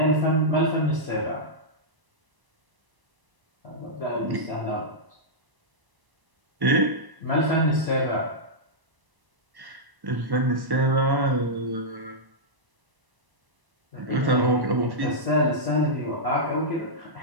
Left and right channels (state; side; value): late; left; 1.0 ms